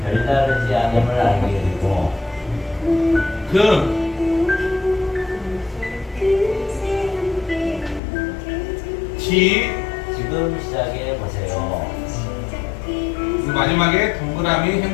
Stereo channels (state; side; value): drops out; right; at 8.0 s